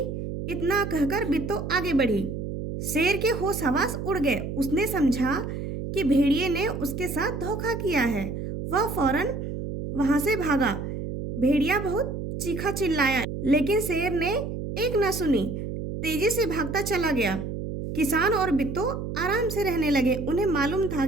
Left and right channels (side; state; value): right; noise; hum, 5 dB below the sound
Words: इतना कहकर बिट्टू आगे बढ़ी। शेर के होश हवास उड़ गए। उसने समझा कि भेड़िए ने उसके साथ धोखा किया है। वह फौरन वहां से भागा। भेड़िया बहुत चीखा चिल्लाया, लेकिन शेर ने एक न सुनी, तेजी से भागता चला गया। किसान और बिट्टू आराम से रहने लगे। उन्हें मालूम था